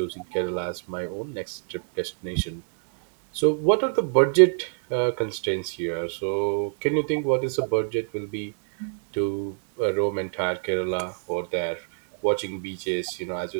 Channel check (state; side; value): silent; left; digital silence